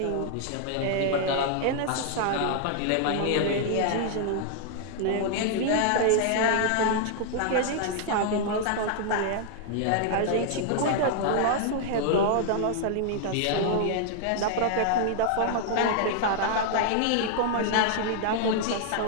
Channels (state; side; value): different; both; correlation 0.00